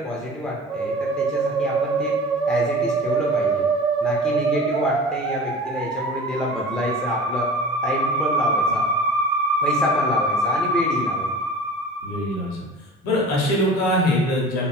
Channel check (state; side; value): normal; both; correlation 0.39